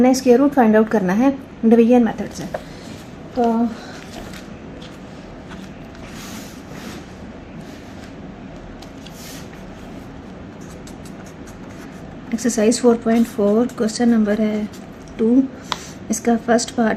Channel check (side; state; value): both; identical; correlation 1.00